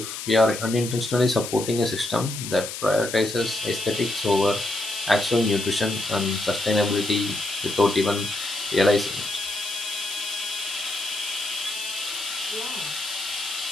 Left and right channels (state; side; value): noise; left; hiss, 7 dB below the sound